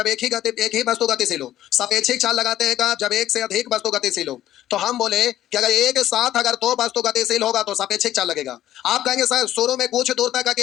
एक ही वस्तु गतिशील हो। सापेक्षिक चाल लगाते हैं कब? जब एक से अधिक वस्तु गतिशील हो। तो हम बोले कि अगर एक साथ अगर 2 वस्तु गतिशील होगा तो सापेक्षिक चाल लगेगा। आप कहेंगे सर शुरू में कुछ दूर तक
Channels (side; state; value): right; quieter; 12.8 dB